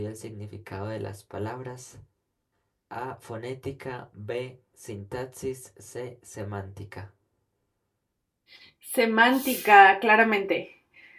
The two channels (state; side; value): identical; both; correlation 1.00